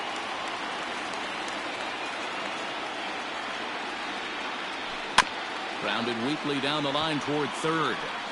Grounded weakly down the line toward third.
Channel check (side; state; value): both; identical; correlation 1.00